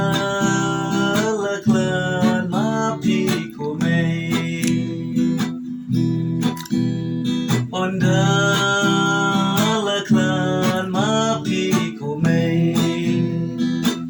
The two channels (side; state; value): both; identical; correlation 1.00